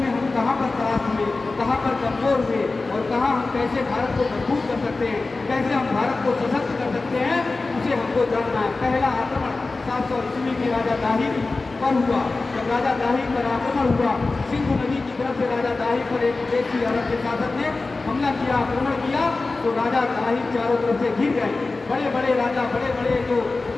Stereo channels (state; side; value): quieter; right; 3.6 dB